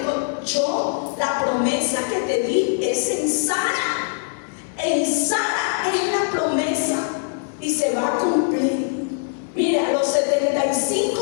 yo, la promesa que te di es en Sara. En Sara es la promesa y se va a cumplir. Mira, a los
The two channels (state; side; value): silent; right; digital silence